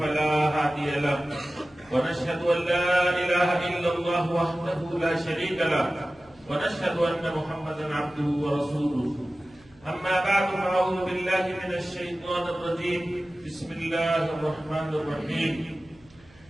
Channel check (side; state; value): right; noise; hum, 28 dB below the sound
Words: هادي له. ونشهد أن لا إله إلا الله وحده لا شريك له ونشهد أن محمدا عبده ورسوله. أما بعد فأعوذ بالله من الشيطان الرجيم. بسم الله الرحمن الرحيم.